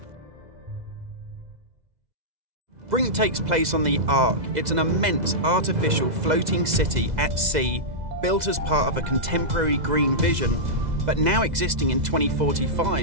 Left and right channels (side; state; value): left; late; 2.0 ms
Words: Brink takes place on the Ark. It's an immense artificial floating city at sea, built as part of a contemporary green vision, but now existing in